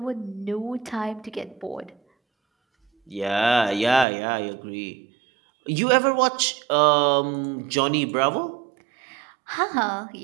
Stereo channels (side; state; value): left; drops out; at 4.0 s